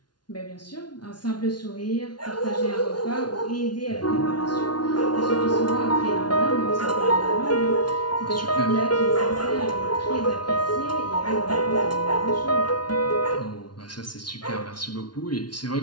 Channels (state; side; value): late; right; 0.70 ms